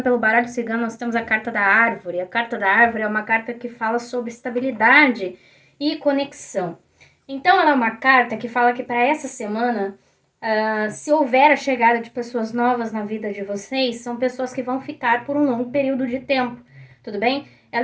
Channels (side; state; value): both; identical; correlation 1.00